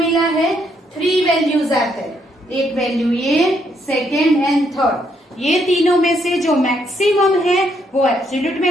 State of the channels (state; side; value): normal; both; correlation 0.73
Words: है? 3 values आते हैं, एक value ये, सेकेंड एंड थर्ड। ये तीनों में से जो मैक्सिमम है वो एब्सोल्यूट